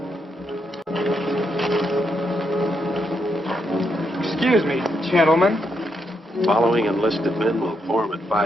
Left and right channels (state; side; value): normal; both; correlation 0.80